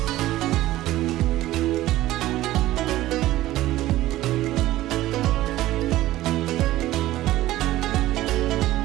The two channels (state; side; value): quieter; left; 15.7 dB